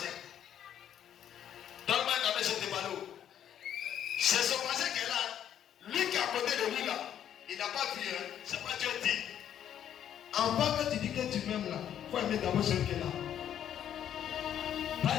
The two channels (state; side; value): quieter; right; 10.1 dB